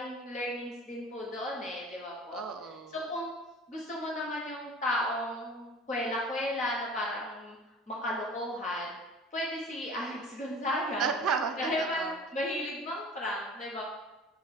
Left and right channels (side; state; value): both; normal; correlation 0.42